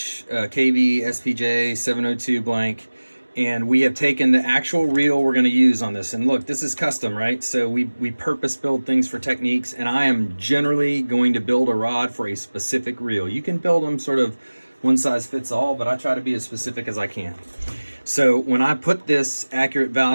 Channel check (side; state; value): both; inverted; correlation -1.00